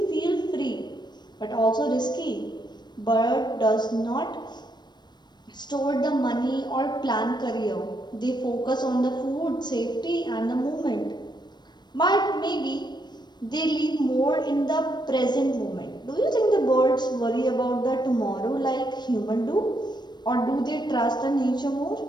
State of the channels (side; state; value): right; late; 0.21 ms